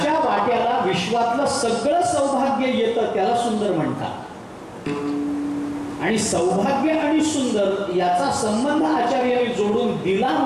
वाट्याला विश्वातलं सगळं सौभाग्य येतं त्याला सुंदर म्हणतात. आणि सौभाग्य आणि सुंदर याचा संबंध आचार्यांनी जोडून दिला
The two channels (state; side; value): identical; both; correlation 1.00